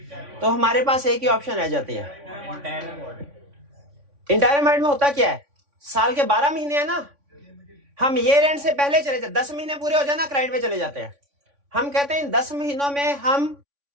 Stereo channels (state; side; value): late; left; 3.5 ms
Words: तो हमारे पास एक ही ऑप्शन रह जाती है। इंटायरम ऑडिट में होता क्या है, साल के 12 महीने है ना, हम ईयर एंड से पहले चले जाते, 10 महीने पूरे हो जाए ना क्लाइंट पे चले जाते हैं। हम कहते हैं इन 10 महीनों में हम